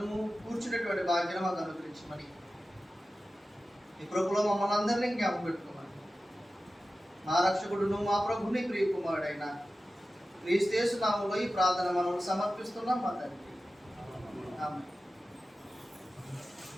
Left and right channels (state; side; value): normal; both; correlation 0.94